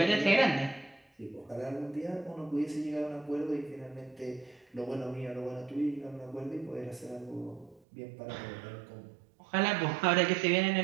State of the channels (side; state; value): left; drops out; at 7.8 s